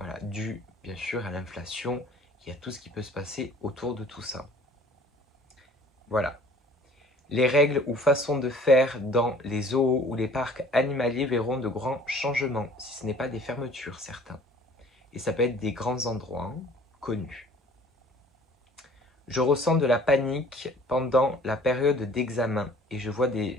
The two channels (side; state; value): both; normal; correlation 0.51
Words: dû bien sûr à l'inflation et à tout ce qui peut se passer autour de tout ça. Voilà. Les règles ou façons de faire dans les zoos ou les parcs animaliers verront de grands changements, si ce n'est pas des fermetures, certains. Et ça peut être des grands endroits connus. Je ressens de la panique pendant la période d'examen et